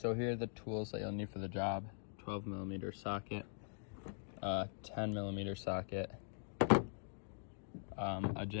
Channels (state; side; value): silent; right; digital silence